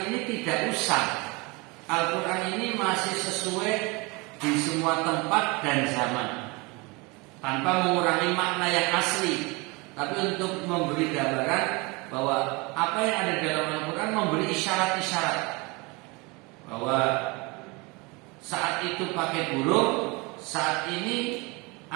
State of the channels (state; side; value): quieter; left; 26.7 dB